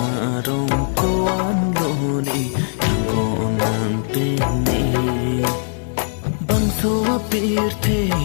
koan lone kanggo nang pene Bangso apir the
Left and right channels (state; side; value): silent; right; digital silence